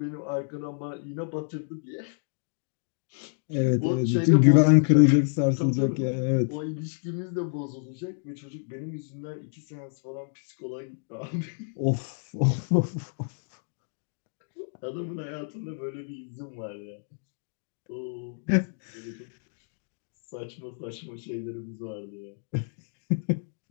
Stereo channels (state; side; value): silent; right; digital silence